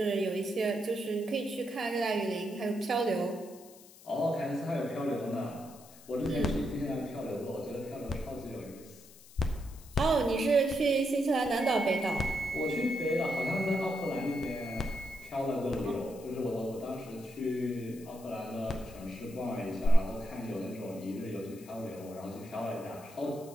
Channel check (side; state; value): left; noise; hiss, 21 dB below the sound